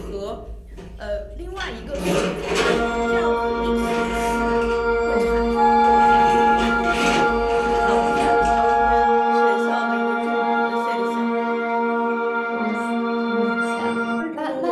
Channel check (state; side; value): identical; both; correlation 1.00